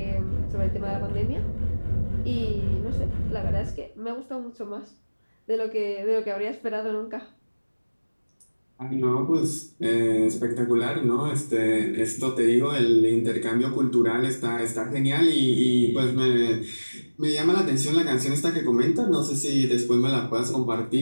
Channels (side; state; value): both; inverted; correlation -1.00